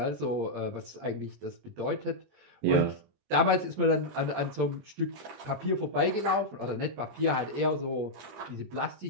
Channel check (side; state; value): left; late; 20 ms